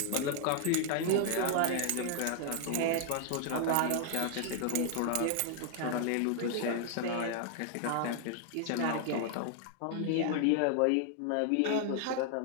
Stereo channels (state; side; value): different; both; correlation 0.00